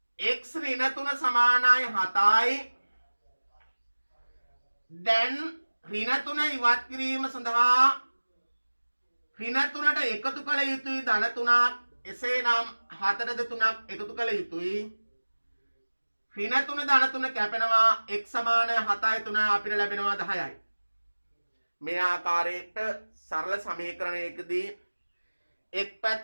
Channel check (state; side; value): inverted; both; correlation -1.00